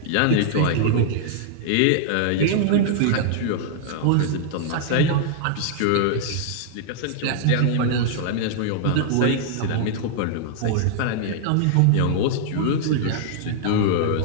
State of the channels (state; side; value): different; both; correlation -0.01